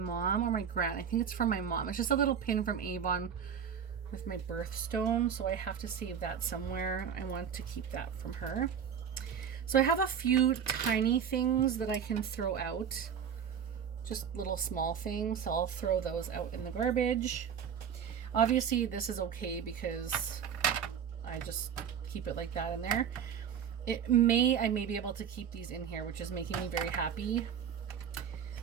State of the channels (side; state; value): left; quieter; 7.9 dB